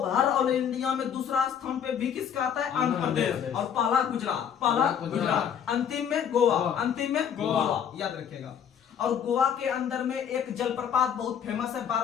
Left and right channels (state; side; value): quieter; right; 8.3 dB